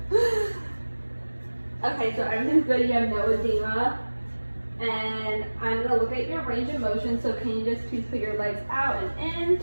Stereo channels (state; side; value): inverted; both; correlation -1.00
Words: Okay, so everything's good. You have no edema. And I'm going to look at your range of motion, so can you just please put your legs out and